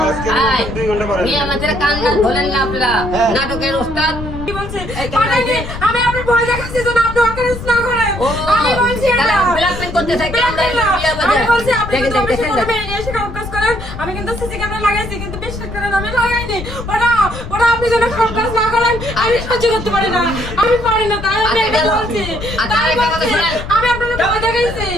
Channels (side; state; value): left; noise; rumble, 10 dB below the sound